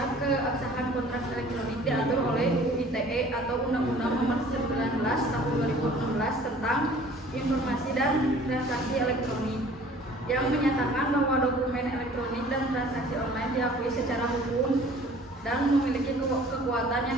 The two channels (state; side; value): normal; both; correlation 0.50